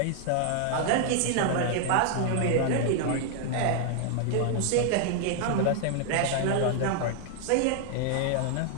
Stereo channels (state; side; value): different; both; correlation 0.00